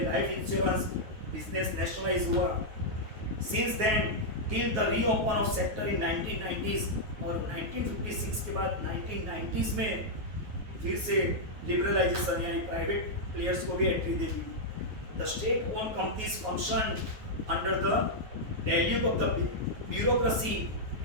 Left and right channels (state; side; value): late; left; 9.4 ms